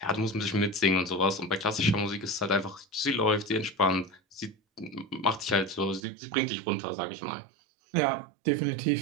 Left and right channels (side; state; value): left; drops out; at 6.0 s